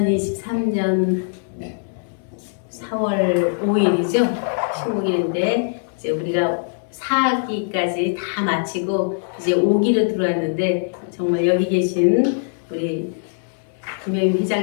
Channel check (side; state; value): right; silent; digital silence